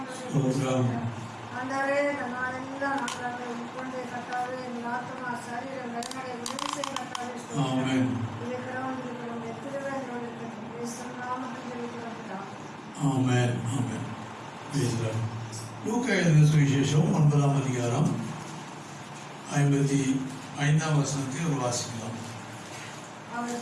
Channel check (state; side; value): identical; both; correlation 1.00